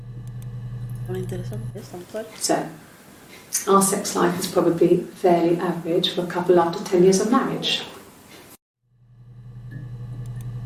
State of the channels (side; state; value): both; identical; correlation 1.00